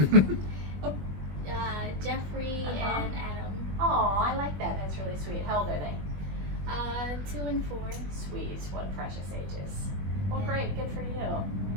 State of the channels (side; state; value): left; late; 21 ms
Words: Jeffrey and Adam. Oh, I like that. That's really sweet. How old are they? 2 and 4. Sweet. What precious ages. Well, great. Good for you.